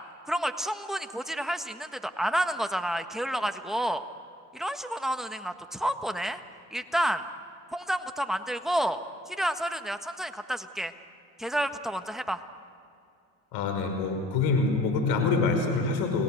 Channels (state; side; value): normal; both; correlation 0.59